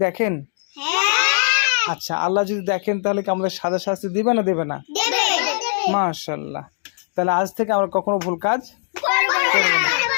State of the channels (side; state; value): right; silent; digital silence